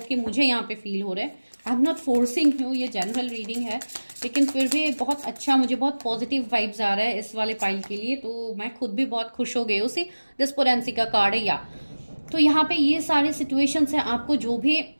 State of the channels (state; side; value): inverted; both; correlation -1.00